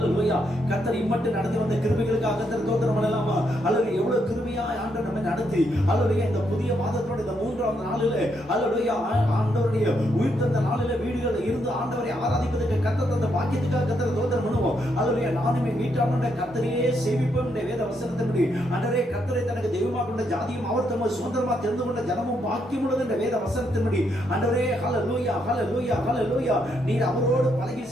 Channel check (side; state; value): both; normal; correlation 0.77